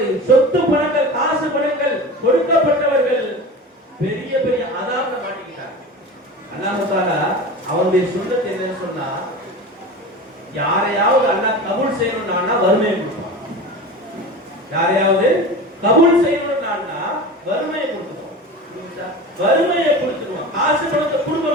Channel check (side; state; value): both; normal; correlation 0.31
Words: சொத்து பணங்கள், காசு பணங்கள் கொடுக்கப்பட்டவர்கள் பெரிய பெரிய அதாபத்தை மாட்டிக்கிட்டாங்க. அல்லாஹ் தஆலா அவருடைய சுன்னத் என்னன்னு சொன்னா, யாரையாவது அல்லாஹ் கபூல் செய்யணும்னா வறுமையை கொடுப்பான். யாரையாவது கபூல் செய்யணும்னா வறுமையை கொடுத்துருவோம். வறுமையை கொடுத்துருவோம். காசு பணத்தை கொடுக்க